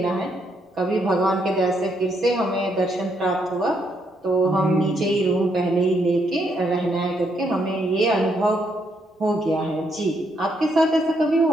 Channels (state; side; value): normal; both; correlation 0.75